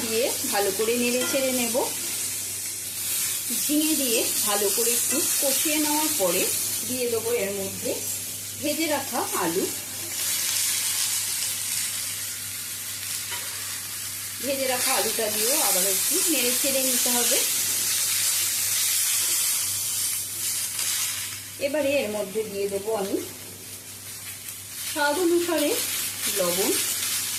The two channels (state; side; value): identical; both; correlation 1.00